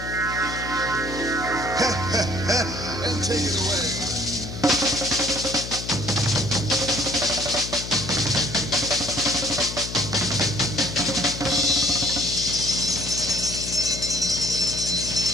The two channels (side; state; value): left; noise; hum, 9 dB below the sound